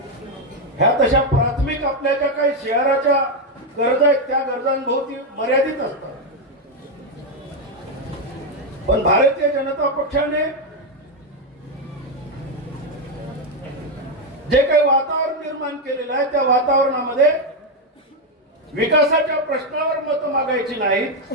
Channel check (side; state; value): both; normal; correlation 0.05